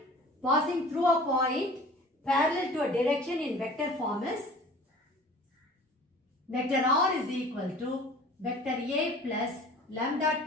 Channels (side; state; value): both; normal; correlation 0.45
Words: passing through a point parallel to a direction in vector form is vector r is equal to vector a plus lambda